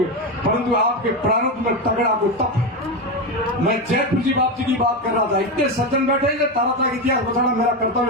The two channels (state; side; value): normal; both; correlation 0.14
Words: परंतु आपके प्रारब्ध में तगड़ा कोई तप है। मैं जैतपुर जी बाप जी की बात कर रहा था, इतने सज्जन बैठे हैं, तारात्रा का इतिहास बताना मेरा